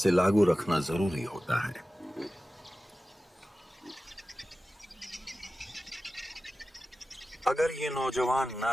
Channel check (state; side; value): normal; both; correlation 0.95